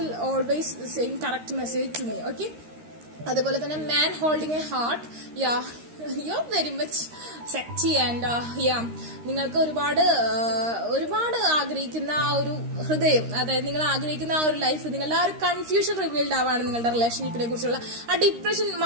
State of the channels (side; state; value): left; late; 13 ms